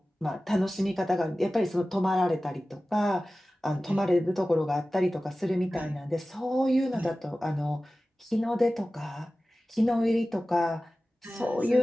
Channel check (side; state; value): both; normal; correlation 0.96